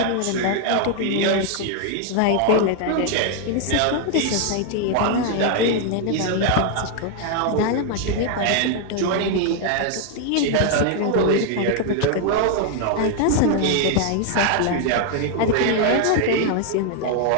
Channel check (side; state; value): both; different; correlation 0.00